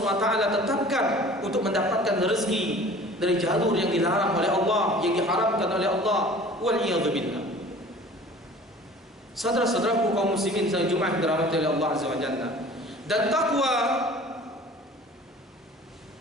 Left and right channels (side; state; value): both; normal; correlation 0.45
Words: tetapkan untuk mendapatkan rezeki dari jalur yang dilarang oleh Allah, yang diharamkan oleh Allah. Waliyadzubillah. Saudara-saudaraku kaum muslimin sedang Jumat dirahmati oleh Allah Azza wa Jalla. Dan takwa